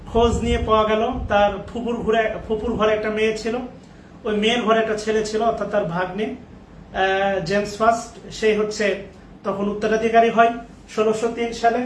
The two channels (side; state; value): both; identical; correlation 1.00